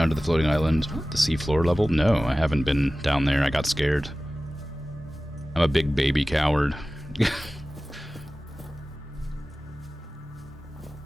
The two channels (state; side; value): normal; both; correlation 0.97